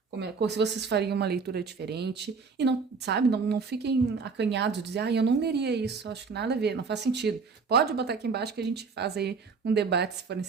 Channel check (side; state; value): left; quieter; 5.0 dB